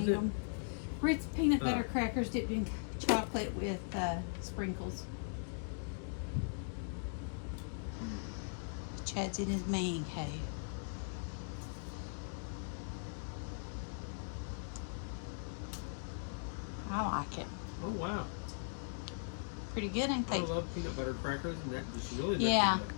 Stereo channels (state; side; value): silent; right; digital silence